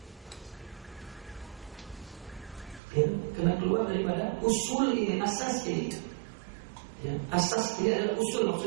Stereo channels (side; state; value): left; drops out; at 2.8 s